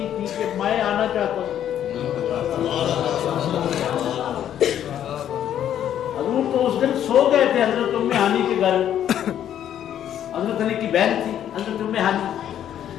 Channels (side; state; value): right; quieter; 10.4 dB